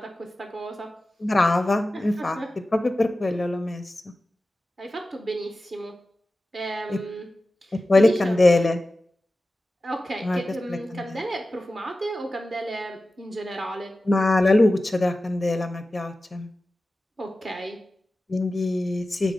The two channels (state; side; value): normal; both; correlation 0.95